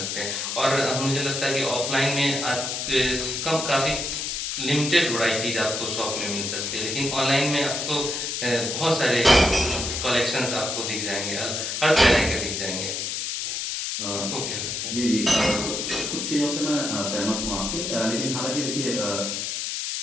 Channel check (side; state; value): left; noise; hiss, 3 dB below the sound